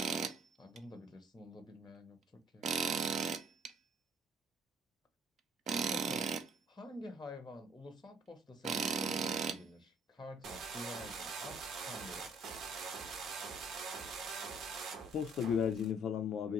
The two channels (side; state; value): both; normal; correlation 0.60